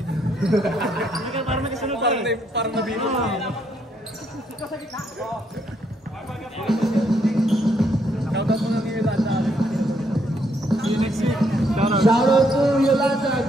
Parang may kasunod pa eh. Parang nabino. Shoutout mo nga kay Yolanda. See you next week. Shoutout to Yolanda.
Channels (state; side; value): normal; both; correlation 0.73